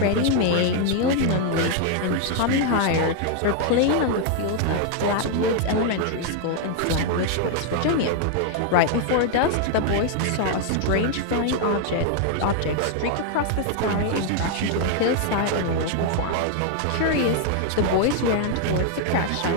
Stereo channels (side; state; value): both; different; correlation 0.00